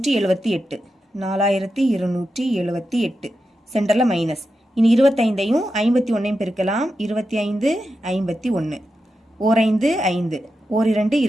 4278. சென்டர்ல மைனஸ். இனி 25ஐயும் 51ஐயும் பெருக்கலாம். 25 51. 5 5 2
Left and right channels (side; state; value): both; normal; correlation 0.89